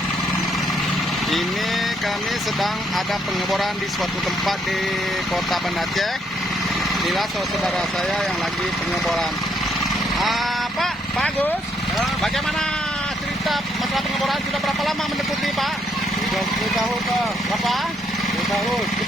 Ini kami sedang ada pengeboran di suatu tempat di Kota Banda Aceh. Inilah saudara saya yang lagi pengeboran. Pak, bagus. Bagaimana cerita masalah pengeboran? Sudah berapa lama mendekati, Pak? 30 tahun, Pak. Berapa? 10 tahun.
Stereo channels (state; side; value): normal; both; correlation 0.72